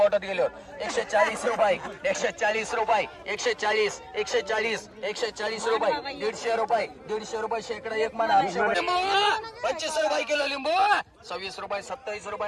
गेल्यावर. 140 रुपये, 140 रुपये, 140, 140, 140 रुपये, 150 रुपये, 150 रुपये शेकडा एक म्हणा. 25 रुपये किलो लिंबू, 26 रुपये, 27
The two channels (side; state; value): both; identical; correlation 1.00